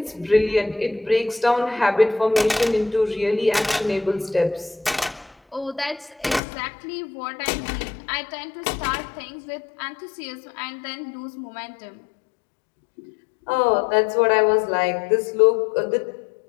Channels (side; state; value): right; drops out; at 6.4 s